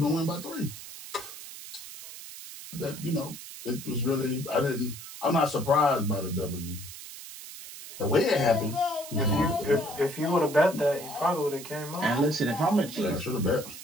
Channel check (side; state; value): right; noise; hiss, 13 dB below the sound